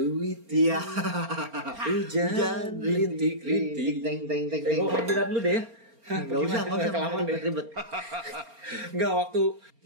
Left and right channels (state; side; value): late; left; 4.3 ms